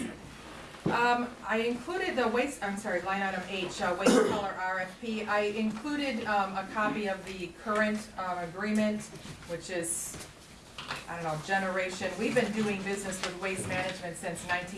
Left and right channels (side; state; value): both; identical; correlation 1.00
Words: I included the waste, I'm sorry, line item H, waste color RFP. I included a copy of the current agreement, which is, I don't know, generation. We've been doing business with Waste Management since